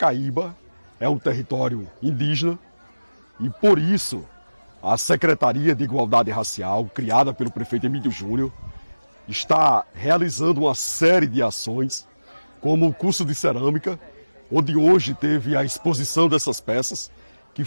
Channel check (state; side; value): inverted; both; correlation -0.99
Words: é um território indígena e por isso a Secretaria de Igualdade Racial, criada pelo prefeito Emílio Júnior, está realizando uma série de ações, como o curso de cerâmica, onde hoje teve a exposição dessas peças, que